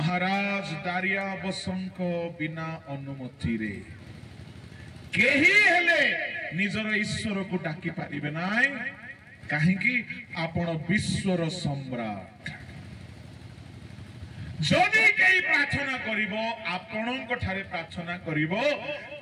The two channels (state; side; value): identical; both; correlation 1.00